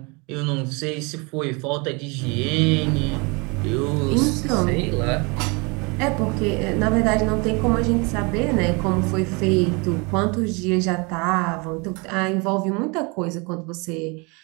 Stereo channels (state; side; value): quieter; left; 29.5 dB